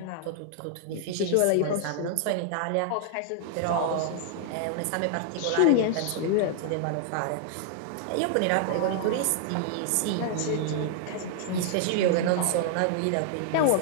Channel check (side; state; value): both; different; correlation -0.01